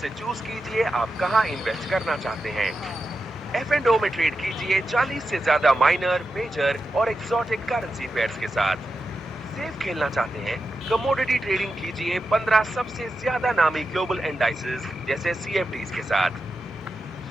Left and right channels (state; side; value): normal; both; correlation 0.89